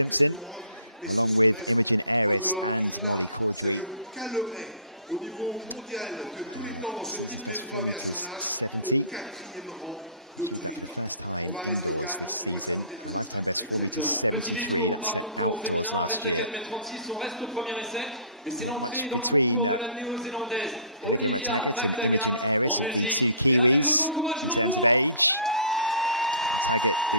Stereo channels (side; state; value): both; inverted; correlation -0.47